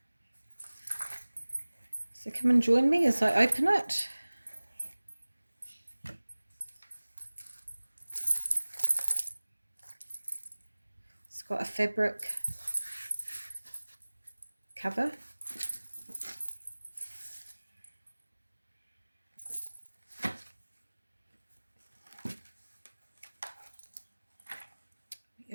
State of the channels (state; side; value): inverted; both; correlation -1.00